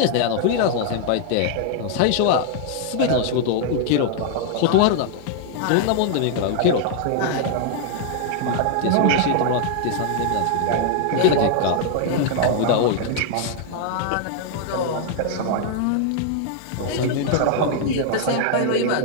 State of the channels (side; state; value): both; different; correlation 0.00